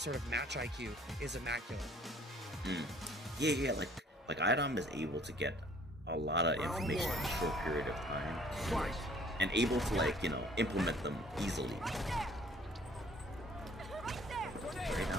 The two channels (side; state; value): both; normal; correlation 0.56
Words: of match IQ is immaculate. Yeah, like iDom is able to get a lot of information in a short period of time, and able to, like, you know, implement them easily. Right